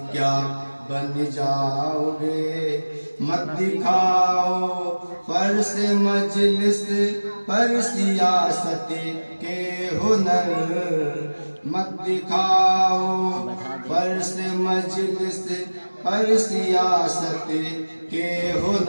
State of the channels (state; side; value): inverted; both; correlation -1.00